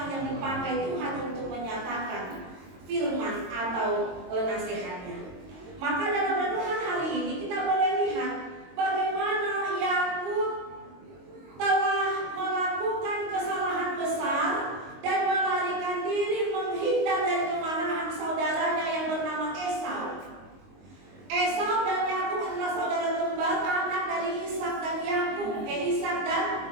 yang dipakai Tuhan untuk menyatakan firman atau nasihatnya. Maka dalam renungan hari ini kita boleh lihat bagaimana Yakub telah melakukan kesalahan besar dan melarikan diri menghindar dari kemarahan saudaranya yang bernama Esau. Esau dan Yakub adalah saudara kembar, anak dari Ishak dan Yakub, Ishak dan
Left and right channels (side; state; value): left; late; 22 ms